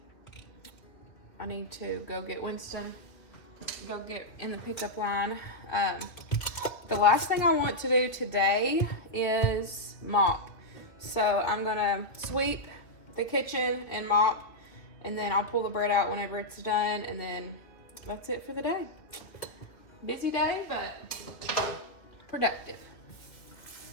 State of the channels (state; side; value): late; right; 2.3 ms